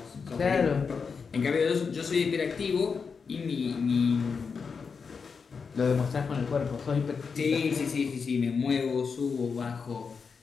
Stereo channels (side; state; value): right; quieter; 5.5 dB